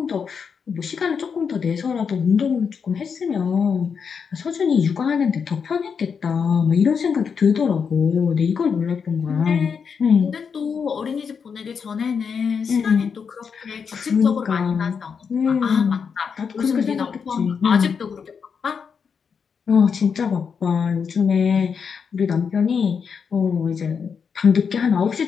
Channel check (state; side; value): quieter; right; 6.3 dB